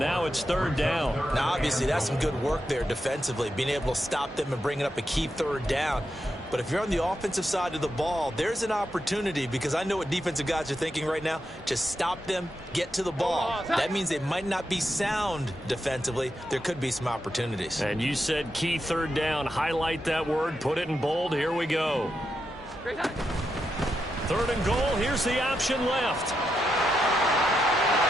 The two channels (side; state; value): both; normal; correlation 0.85